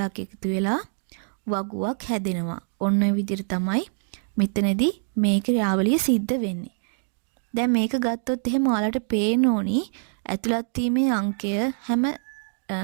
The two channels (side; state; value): left; silent; digital silence